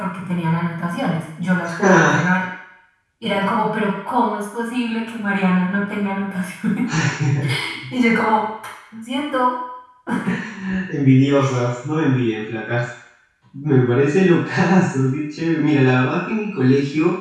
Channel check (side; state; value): both; identical; correlation 1.00